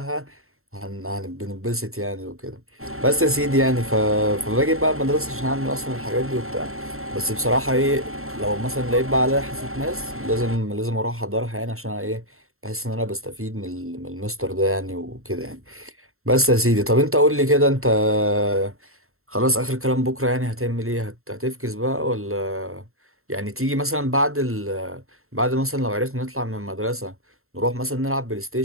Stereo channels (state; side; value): late; left; 0.62 ms